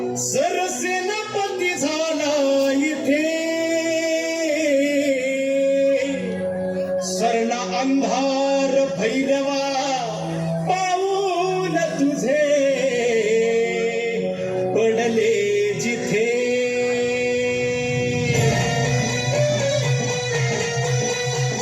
सरसेनापती झाला इथे सरला अंधार भैरवा पाऊल तुझे पडले जिथे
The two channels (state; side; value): identical; both; correlation 1.00